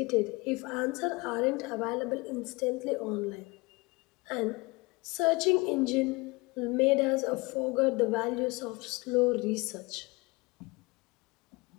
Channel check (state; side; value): quieter; right; 25.2 dB